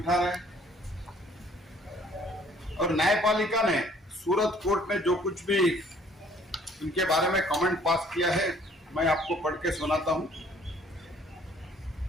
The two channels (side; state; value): both; normal; correlation 0.58